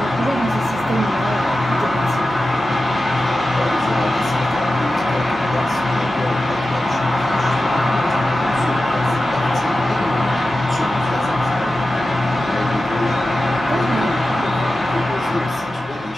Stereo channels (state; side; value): normal; both; correlation 0.93